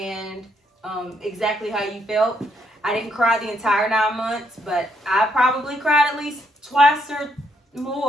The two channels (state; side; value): normal; both; correlation 0.73